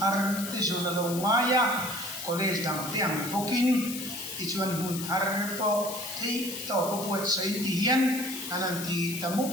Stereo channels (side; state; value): left; noise; hiss, 8 dB below the sound